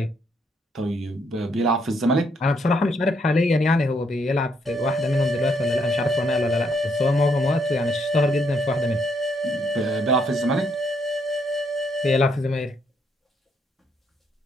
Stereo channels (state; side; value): normal; both; correlation 0.73